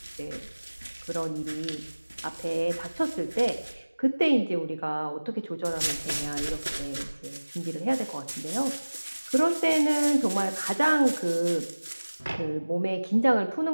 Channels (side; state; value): both; inverted; correlation -1.00